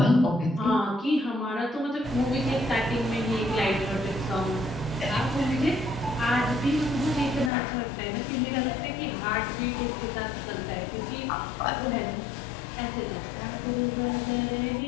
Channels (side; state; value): right; drops out; at 7.5 s